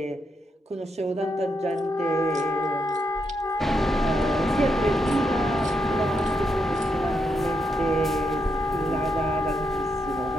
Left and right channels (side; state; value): both; normal; correlation 0.81